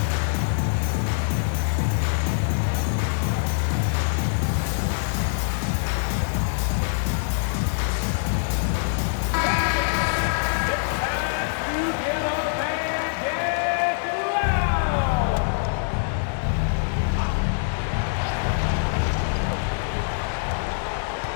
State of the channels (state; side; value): silent; right; digital silence